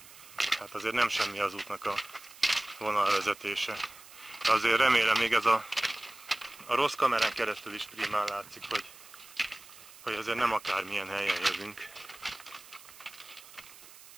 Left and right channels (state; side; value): noise; right; hiss, 19 dB below the sound